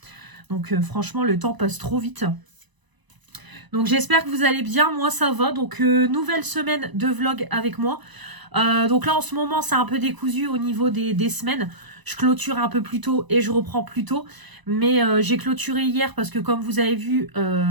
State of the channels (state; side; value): late; left; 1.0 ms